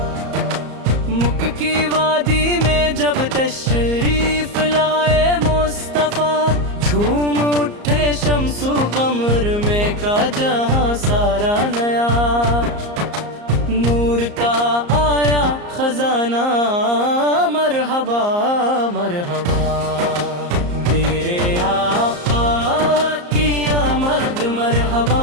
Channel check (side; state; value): left; late; 34 ms